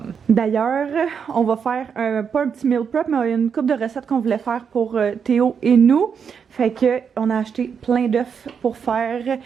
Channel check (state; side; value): quieter; left; 6.8 dB